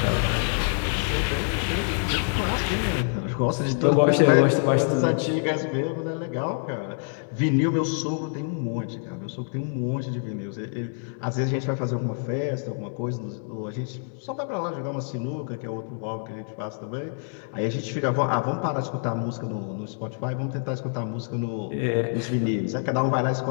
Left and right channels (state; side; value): silent; right; 61 dB below the other